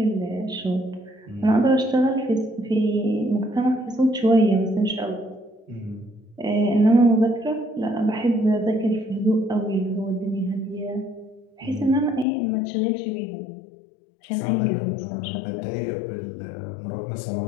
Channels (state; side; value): drops out; right; at 12.2 s